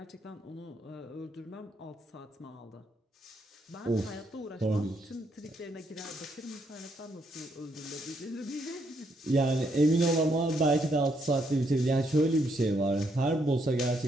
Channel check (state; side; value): normal; both; correlation 0.75